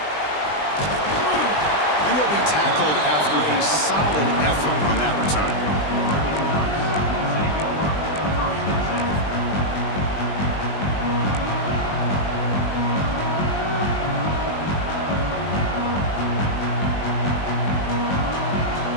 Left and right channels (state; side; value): late; right; 20 ms